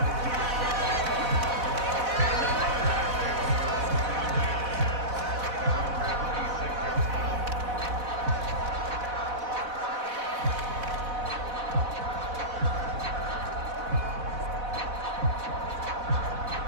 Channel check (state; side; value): late; left; 4.1 ms